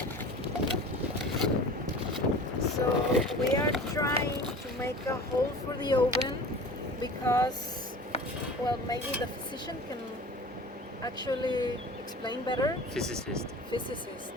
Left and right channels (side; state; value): both; normal; correlation 0.39